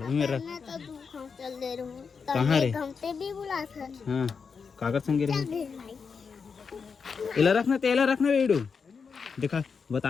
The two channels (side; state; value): right; quieter; 5.7 dB